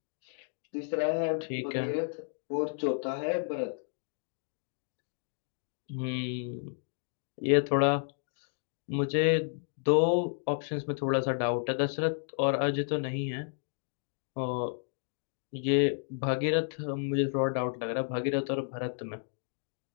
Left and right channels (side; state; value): right; silent; digital silence